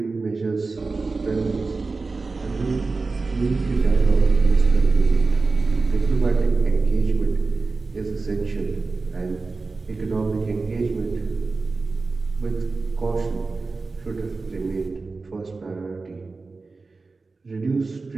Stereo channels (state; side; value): quieter; left; 3.9 dB